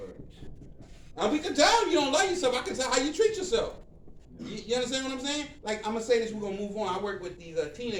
And we can tell you don't love yourself. I can tell how you treat yourself. You understand what I'm saying? Like, I'm going to say this, we're going to move on. I work with these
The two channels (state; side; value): identical; both; correlation 1.00